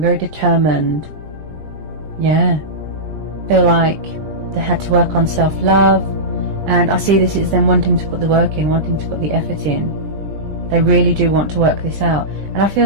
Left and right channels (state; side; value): late; left; 20 ms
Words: determined. Yeah. Feel like they had to work on self-love. And I see this as them wanting to put the work in, wanting to put the effort in. They really do want to work this out. And I feel